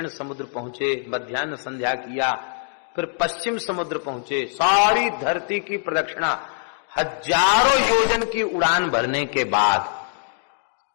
समुद्र पहुंचे, मध्याह्न संध्या किया, फिर पश्चिम समुद्र पहुंचे, सारी धरती की प्रदक्षिणा हजारों योजन की उड़ान भरने के बाद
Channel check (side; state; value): right; silent; digital silence